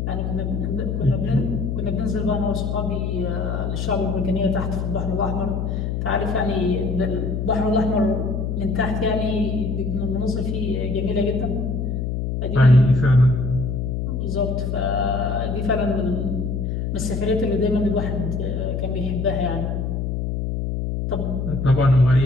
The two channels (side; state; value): left; noise; hum, 1 dB below the sound